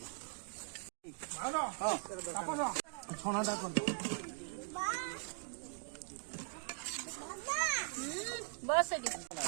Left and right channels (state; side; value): silent; left; 51 dB below the other